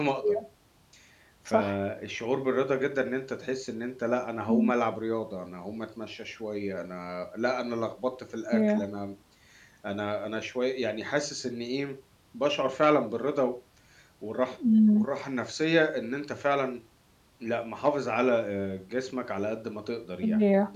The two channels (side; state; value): both; identical; correlation 1.00